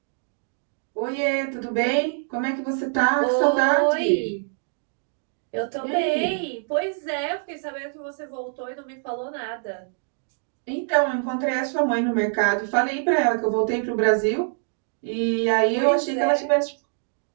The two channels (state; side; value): silent; left; digital silence